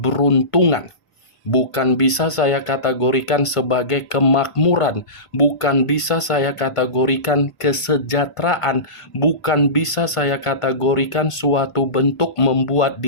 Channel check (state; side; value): late; right; 1.5 ms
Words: Bukan bisa saya kategorikan sebagai kemakmuran. Bukan bisa saya kategorikan kesejahteraan. Bukan bisa saya kategorikan suatu bentuk membuat